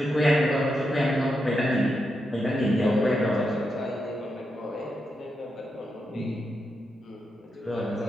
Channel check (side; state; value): both; normal; correlation 0.85